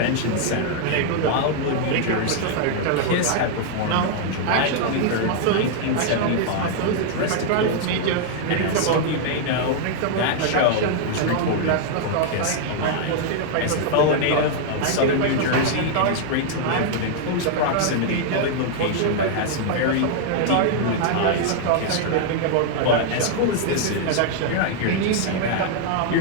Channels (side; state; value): both; different; correlation 0.00